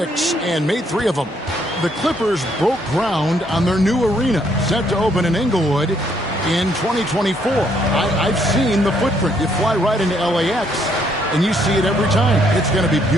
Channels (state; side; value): normal; both; correlation 0.70